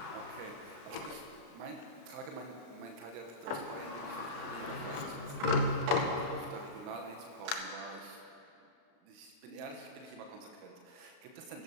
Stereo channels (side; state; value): left; late; 35 ms